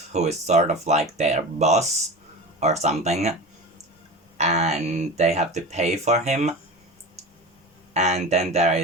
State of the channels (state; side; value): normal; both; correlation 0.29